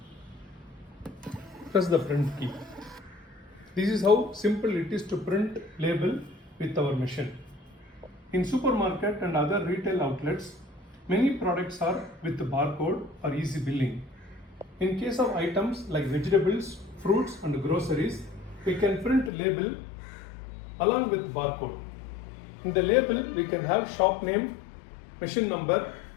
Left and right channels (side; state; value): right; drops out; at 19.3 s